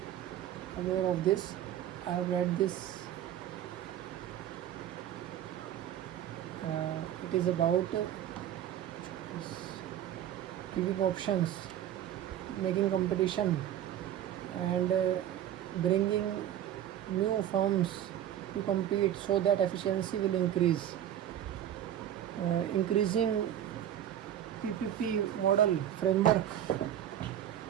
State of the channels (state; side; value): quieter; left; 11.1 dB